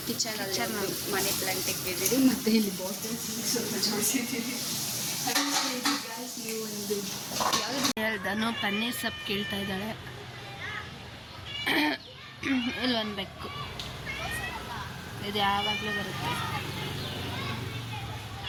ಕಿಚನ್ ಮನಿ ಪ್ಲಾಂಟ್ ಇಕ್ಕಿದ್ದೀರಿ, ಮತ್ತೆ ಇಲ್ಲಿ ಬಾಟಲ್ಸ್ ಸ್ವಲ್ಪ ಜೋಡಿಸಿದ್ದೀರಿ. ಹೇಳ್ದನು ಪನ್ನೀರ್ ಸೊಪ್ಪು ಕೇಳ್ತಾ ಇದ್ದಾಳೆ. ಇಲ್ಲೊಂದು ಬೆಕ್ಕು, ಇದು ಯಾವಾಗಲೂ ಬರುತ್ತೆ.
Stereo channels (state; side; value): identical; both; correlation 1.00